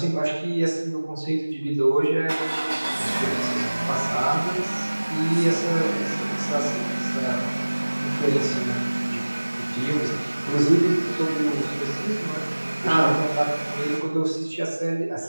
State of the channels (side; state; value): both; inverted; correlation -1.00